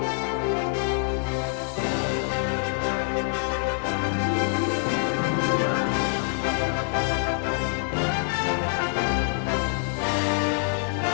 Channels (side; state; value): right; silent; 61 dB below the other